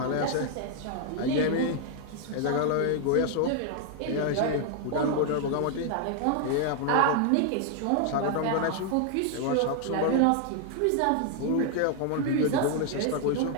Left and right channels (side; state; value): both; different; correlation 0.00